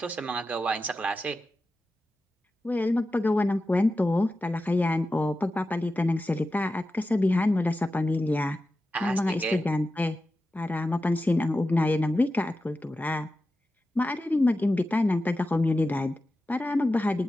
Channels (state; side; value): normal; both; correlation 0.92